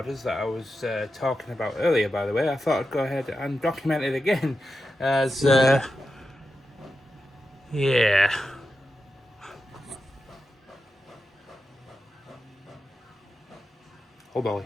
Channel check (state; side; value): normal; both; correlation 0.90